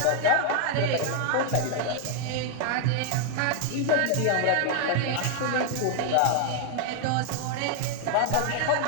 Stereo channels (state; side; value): different; both; correlation 0.00